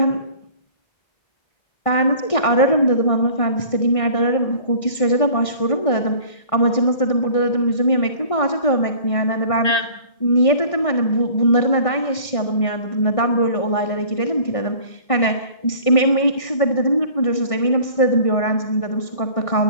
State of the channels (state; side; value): late; right; 1.6 ms